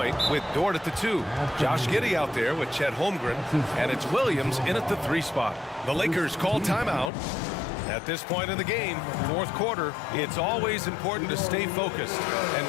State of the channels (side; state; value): right; drops out; at 7.1 s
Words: with Dort at the 2. Josh Giddey out there with Chet Holmgren. And it's Williams in at the 3 spot. The Lakers call timeout. At this point in the game, fourth quarter, it's always important to stay focused. And